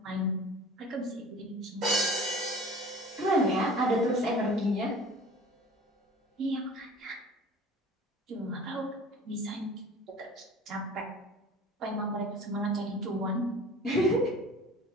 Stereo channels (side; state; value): both; normal; correlation 0.43